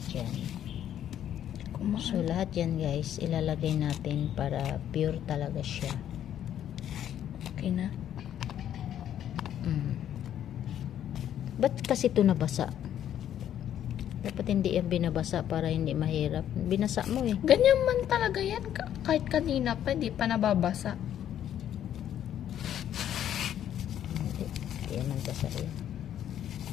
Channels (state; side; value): quieter; right; 10.5 dB